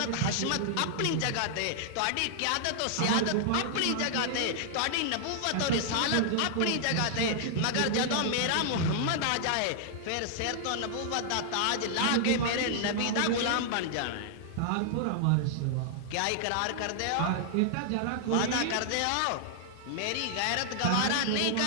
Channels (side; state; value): both; different; correlation -0.01